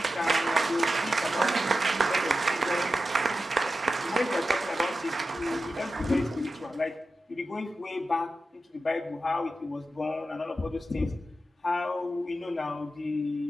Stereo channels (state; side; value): normal; both; correlation 0.91